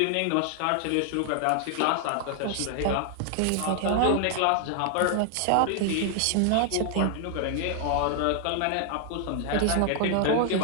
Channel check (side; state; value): both; different; correlation 0.00